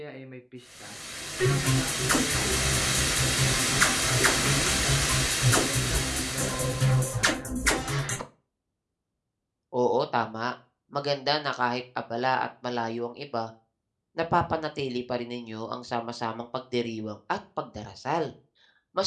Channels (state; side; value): identical; both; correlation 1.00